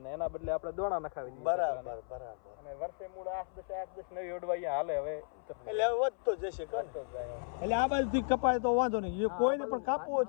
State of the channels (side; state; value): right; silent; 55 dB below the other